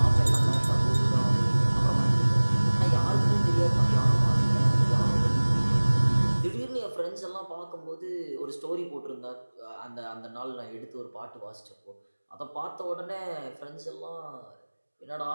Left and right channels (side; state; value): both; inverted; correlation -1.00